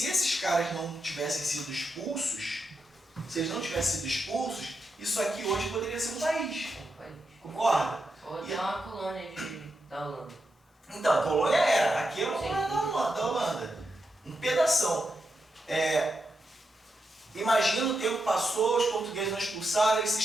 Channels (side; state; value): both; normal; correlation 0.86